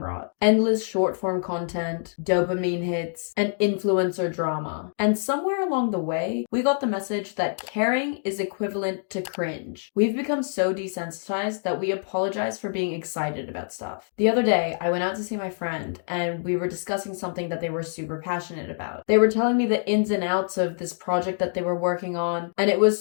Endless short form content, dopamine hits, and influencer drama. And somewhere along the way, we got the message that caring is equivalent to cringe. We've become so desensitized that we apologize for being excited about stuff. The other day, I went out to see my friend, and we were discussing something that they were super passionate about. They were telling me the ins and outs of this project that they were working on, and it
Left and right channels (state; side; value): silent; right; digital silence